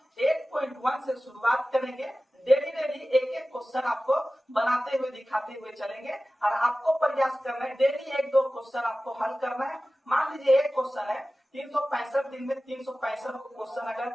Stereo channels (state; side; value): normal; both; correlation 0.96